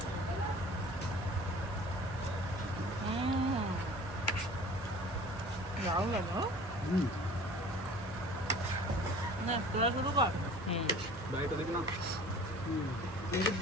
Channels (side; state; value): both; normal; correlation 0.45